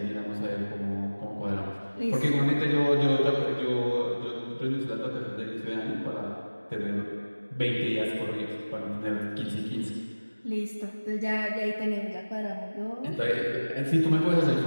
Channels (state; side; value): inverted; both; correlation -1.00